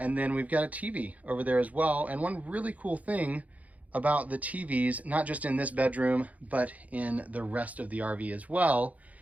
then we've got a TV over there as well. And one really cool thing about the TVs, not just in this bedroom, but in the rest of the RV as well,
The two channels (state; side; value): late; left; 0.072 ms